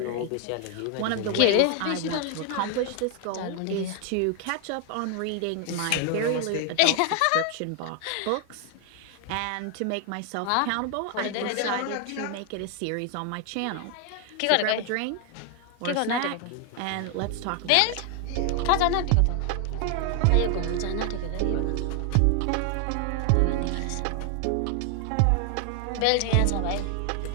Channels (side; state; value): both; different; correlation 0.00